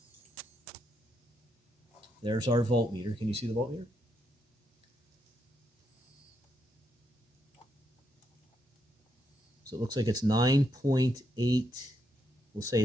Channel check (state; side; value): normal; both; correlation 0.79